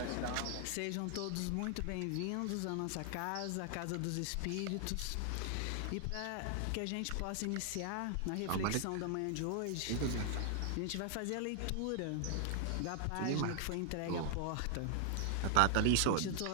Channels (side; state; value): both; different; correlation 0.00